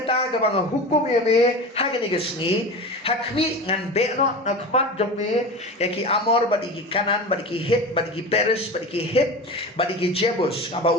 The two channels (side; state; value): both; normal; correlation 0.30